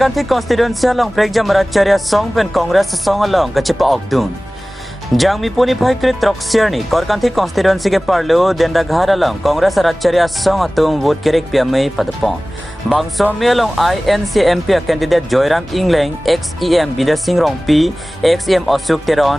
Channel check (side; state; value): both; normal; correlation 0.98